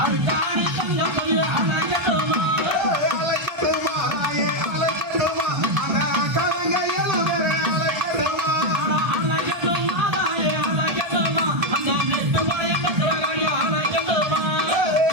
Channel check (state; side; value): late; left; 1.3 ms